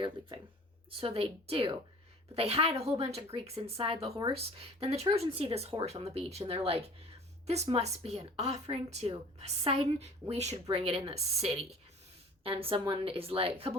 leaving. So they do. But they hide a whole bunch of Greeks inside the horse. Then the Trojans see this horse on the beach, and they're like, this must be an offering to Poseidon. We should bring it in the city. And someone is like, a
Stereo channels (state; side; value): normal; both; correlation 0.46